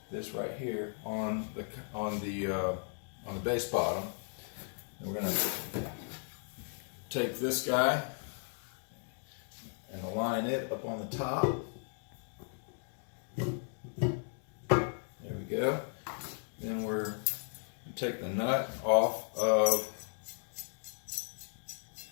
this right here, on the bass bottom. And we're going to take this guy and align it up on the top. There we go. Then we're going to take the nut off of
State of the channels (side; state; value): right; silent; 54 dB below the other